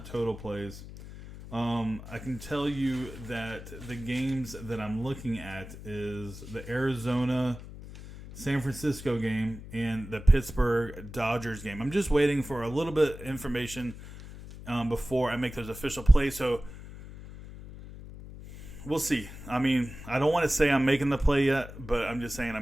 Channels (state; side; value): noise; left; hum, 14 dB below the sound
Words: total plays. I can tell you that the games that I'm looking at is the Arizona San Francisco game and the Pittsburgh Dodgers game. I'm just waiting for a little bit of information before I make those official plays. So we'll see. I mean, I don't want to say I'm making the play yet, but I'm just saying